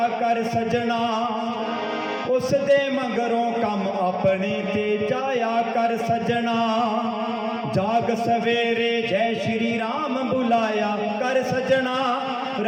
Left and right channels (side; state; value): both; identical; correlation 1.00